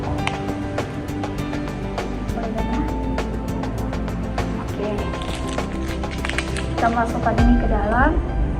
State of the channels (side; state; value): both; identical; correlation 1.00